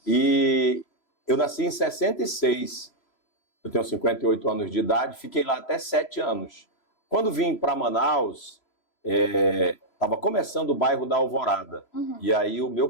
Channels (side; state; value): right; late; 3.0 ms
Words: E eu nasci em 66, eu tenho 58 anos de idade, fiquei lá até 7 anos. Quando vim para Manaus, estava começando o bairro da Alvorada. E aí o meu